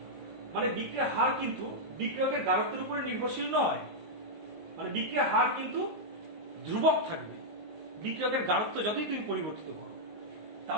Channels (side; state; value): left; late; 19 ms